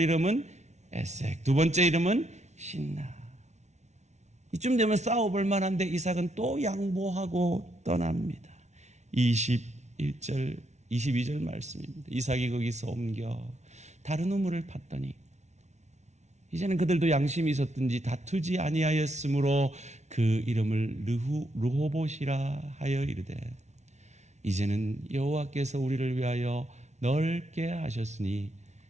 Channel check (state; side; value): late; left; 0.32 ms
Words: 이름은 에색, 두 번째 이름은 신나. 이쯤 되면 싸워볼 만한데 이삭은 또 양보하고 떠납니다. 21절, 22절 말씀입니다. 이삭이 거기서 옮겨 다른 우물을 팠더니 이제는 그들도 양심이 있었든지 다투지 아니하였으므로 그 이름을 르호봇이라 하여 이르되, 이제는 여호와께서 우리를 위하여 넓게 하셨으니